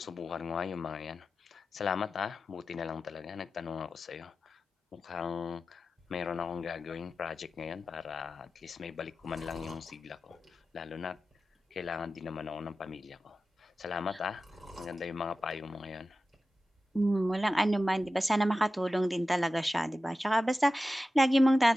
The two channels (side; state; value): both; normal; correlation 0.93